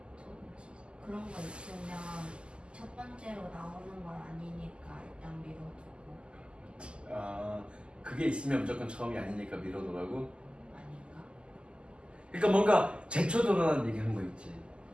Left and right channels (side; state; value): left; late; 0.051 ms